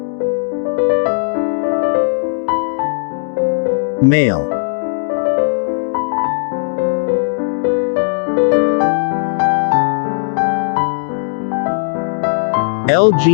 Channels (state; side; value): silent; right; digital silence